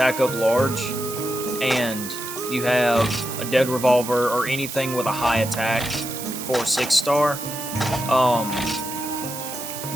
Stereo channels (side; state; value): right; noise; hiss, 9 dB below the sound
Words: up large and you have a Dead Revolver or anything with a high attack for 6-star,